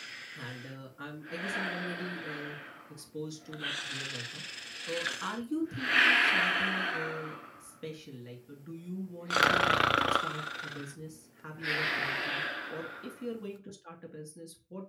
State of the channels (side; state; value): both; identical; correlation 1.00